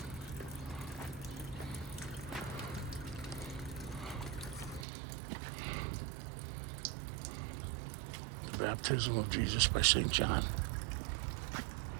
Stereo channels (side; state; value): left; drops out; at 4.9 s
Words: Baptism of Jesus by St. John.